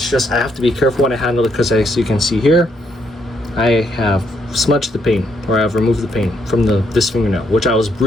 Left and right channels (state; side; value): normal; both; correlation 0.74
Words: just I have to be careful when I handle it, because as you can see here, I have smudged the paint, or I've removed the paint from this fingernail, which I was